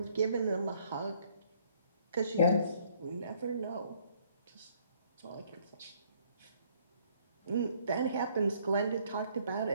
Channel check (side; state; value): both; inverted; correlation -0.64